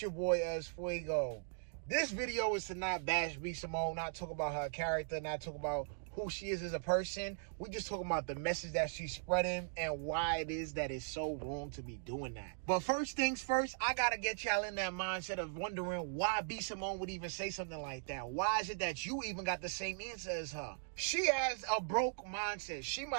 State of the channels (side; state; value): left; silent; digital silence